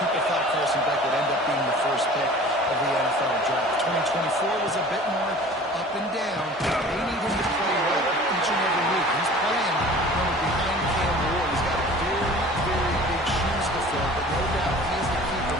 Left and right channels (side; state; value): both; normal; correlation 0.44